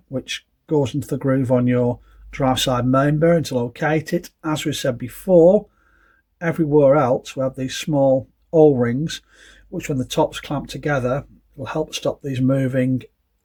which goes into the groove on your drive side main bearing to locate it. As we said before, everywhere else we have these small O-rings, which when the top's clamped together will help stop these moving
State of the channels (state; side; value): identical; both; correlation 1.00